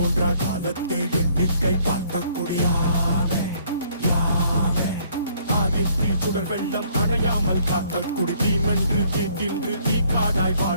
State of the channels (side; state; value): both; inverted; correlation -0.63